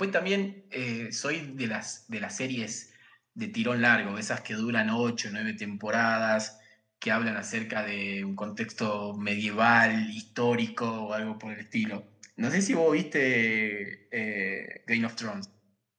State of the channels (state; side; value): identical; both; correlation 1.00